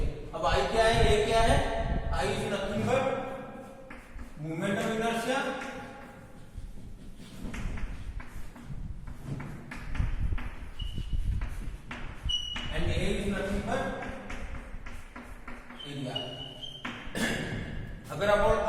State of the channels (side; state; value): both; identical; correlation 1.00